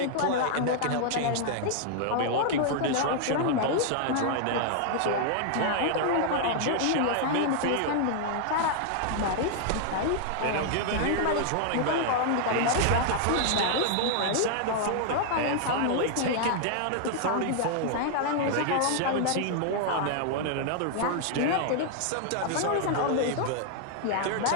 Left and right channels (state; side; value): different; both; correlation -0.01